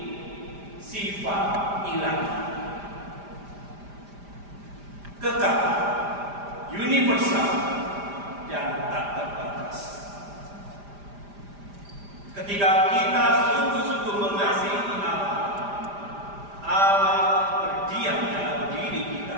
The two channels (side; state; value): left; late; 5.0 ms